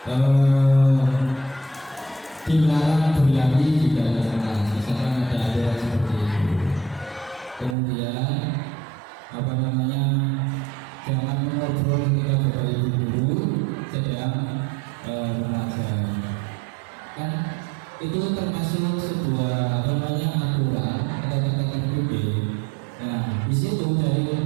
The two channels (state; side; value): drops out; left; at 7.8 s